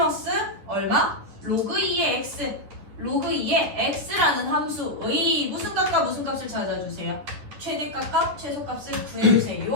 얼마? 로그 2의 x 로그 2의 x라는 함수의 무슨 값과 무슨 값을 찾아주세요. 최대값과 최소값을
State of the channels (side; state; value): left; late; 10 ms